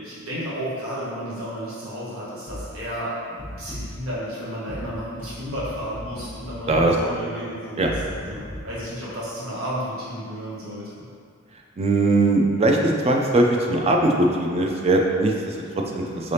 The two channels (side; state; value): both; normal; correlation 0.47